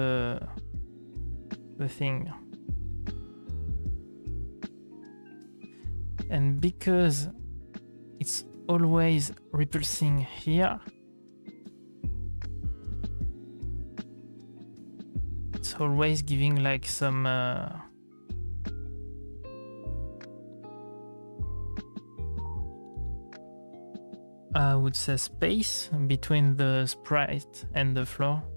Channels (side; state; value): both; inverted; correlation -1.00